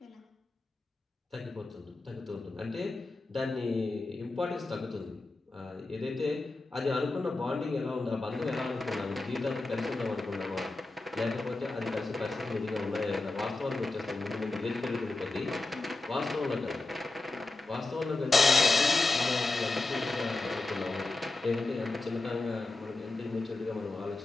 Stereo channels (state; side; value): quieter; right; 3.2 dB